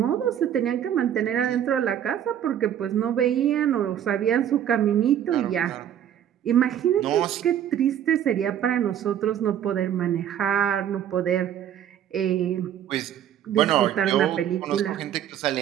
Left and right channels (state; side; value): quieter; left; 10.1 dB